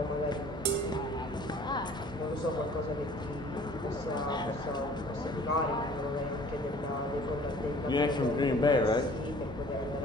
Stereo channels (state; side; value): normal; both; correlation 0.51